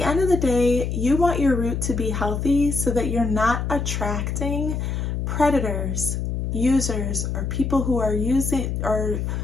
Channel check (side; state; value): left; noise; hum, 2 dB below the sound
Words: end of the day, you want your root to be healthy so that you're not attracting predators, users, or people who are using or